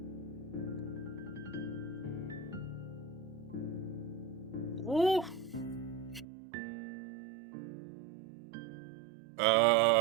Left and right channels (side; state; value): left; drops out; at 6.2 s